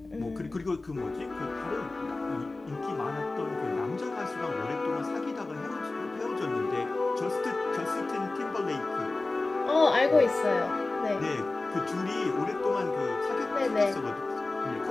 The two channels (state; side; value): quieter; right; 3.2 dB